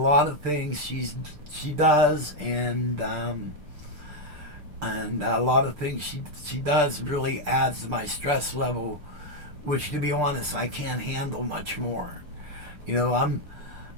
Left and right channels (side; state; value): left; late; 6.7 ms